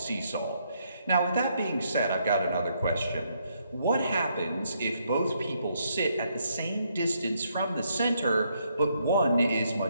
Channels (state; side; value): inverted; both; correlation -0.74